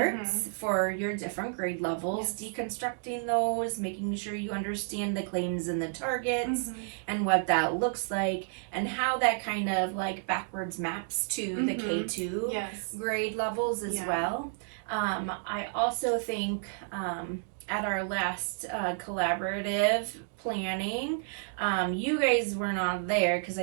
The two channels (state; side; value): silent; left; digital silence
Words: for your different grade levels, deconstructing those, making sure you understand the claims and the targets and what that looks like and how that kind of like backwards maps to the K2 grade levels as well. I also think at our last collaborative planning, you guys were not there because